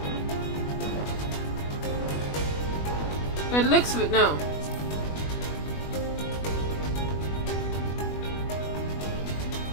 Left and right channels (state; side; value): late; right; 20 ms